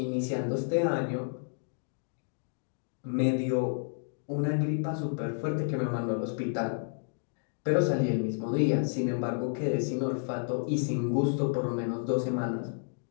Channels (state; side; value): silent; right; digital silence